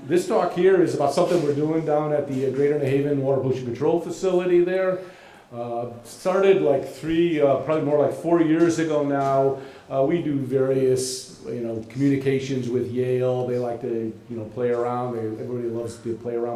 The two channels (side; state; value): both; identical; correlation 1.00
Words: this talk here is about something we're doing down at the Greater New Haven Water Pollution Control Facility there. Started like probably more like 4 years ago now. We do various, communications with Yale. They like to, play around. Everybody loves to play